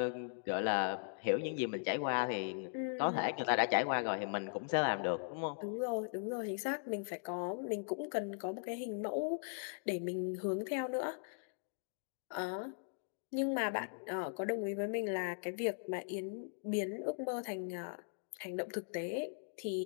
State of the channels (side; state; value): right; silent; digital silence